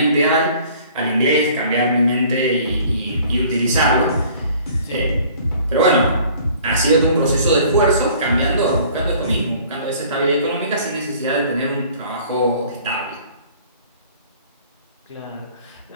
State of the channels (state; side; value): inverted; both; correlation -0.52